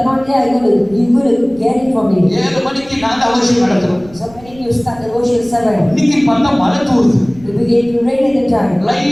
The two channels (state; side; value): noise; right; rumble, 23 dB below the sound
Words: not there, you're going to get it from me. 7 மணிக்கு நாங்க அவசியம் நடத்துறோம். So when you start the worship 7, இன்னைக்கு பார்த்தா மழை தூருது. it began to rain at the time.